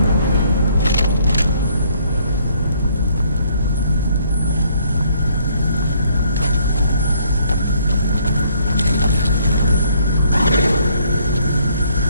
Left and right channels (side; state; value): both; inverted; correlation -0.65